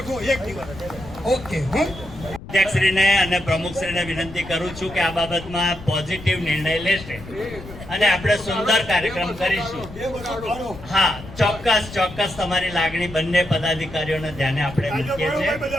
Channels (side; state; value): left; noise; rumble, 15 dB below the sound